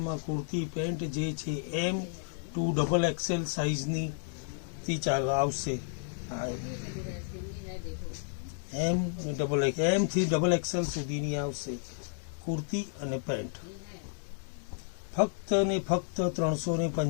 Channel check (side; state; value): right; silent; digital silence